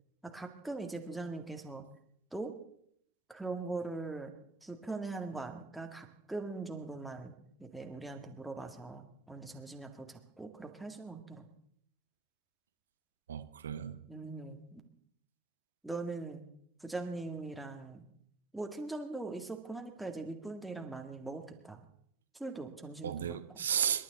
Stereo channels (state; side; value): quieter; left; 4.4 dB